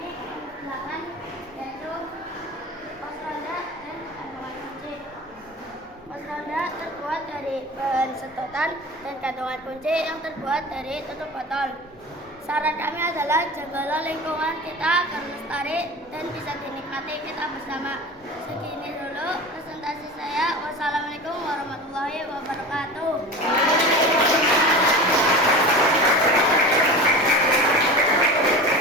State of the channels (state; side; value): normal; both; correlation 0.32